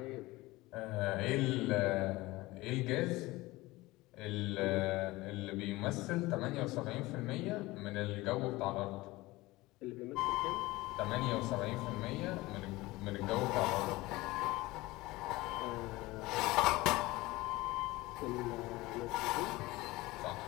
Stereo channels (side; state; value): right; quieter; 20.1 dB